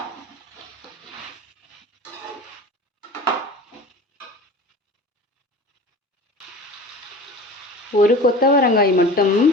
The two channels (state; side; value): normal; both; correlation 0.38